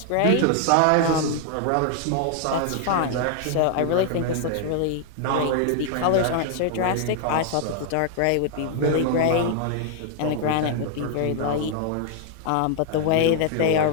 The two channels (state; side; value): different; both; correlation 0.00